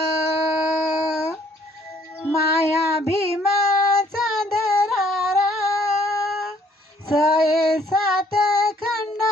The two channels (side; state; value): both; normal; correlation 0.62